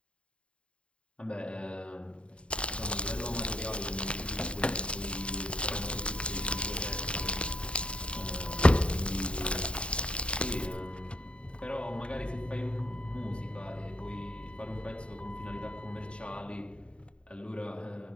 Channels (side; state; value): right; late; 0.057 ms